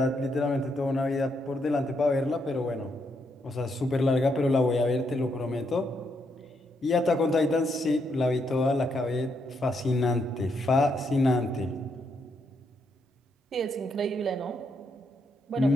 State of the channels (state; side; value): normal; both; correlation 0.78